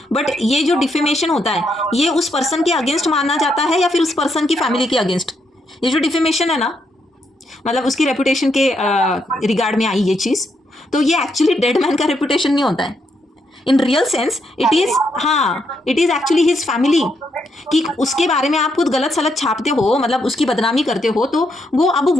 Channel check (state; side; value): normal; both; correlation 0.78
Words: But ये जो डिफेमेशन होता है, ये उस पर्सन के अगेंस्ट माना जाता है या फिर उस पर्सन की फैमिली के अगेंस्ट? ये जो डिफेमेशन है ना, मतलब उसकी रेपुटेशन के रिगार्ड में आई ये चीज़, तो ये एक्चुअली डेड मैन का रेपुटेशन नहीं होता है. In real sense it is, हाँ it is actually his family, कि उसके बारे में आप खुद गलत सलत छापते हो, मतलब उसकी बदनामी करते हो, तो